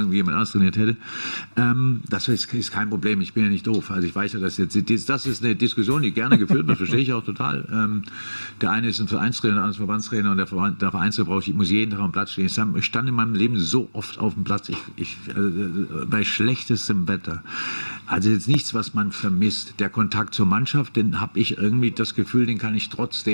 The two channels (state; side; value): inverted; both; correlation -1.00